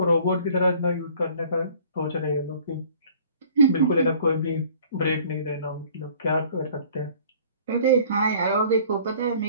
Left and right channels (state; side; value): inverted; both; correlation -0.52